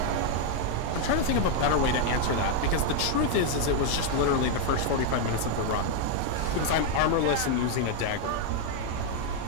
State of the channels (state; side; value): different; both; correlation 0.00